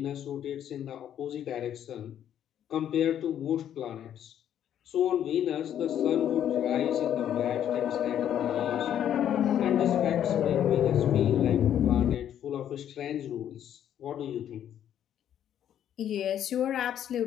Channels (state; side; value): quieter; right; 10.2 dB